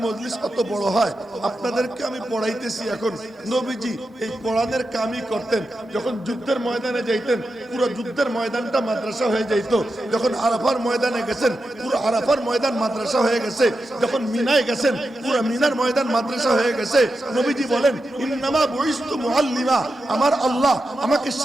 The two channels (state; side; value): normal; both; correlation 0.89